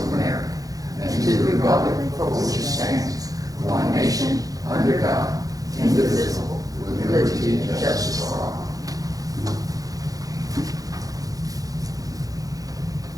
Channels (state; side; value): late; left; 0.17 ms